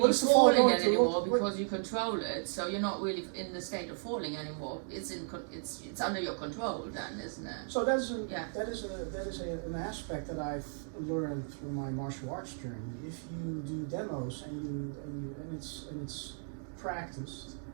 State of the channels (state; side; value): silent; left; 55 dB below the other